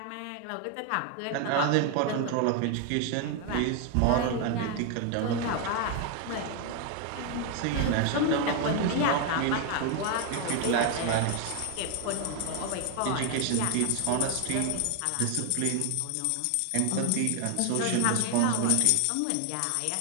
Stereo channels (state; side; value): different; both; correlation 0.01